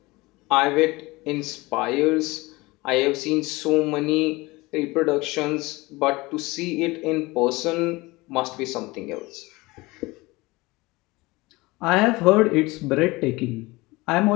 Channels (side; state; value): right; quieter; 22.1 dB